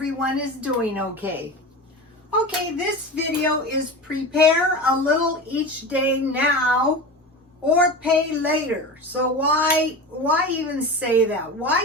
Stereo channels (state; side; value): normal; both; correlation 0.29